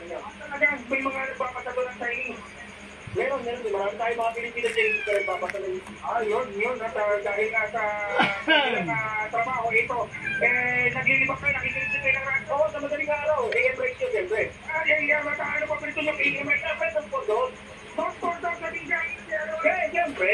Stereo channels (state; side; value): identical; both; correlation 1.00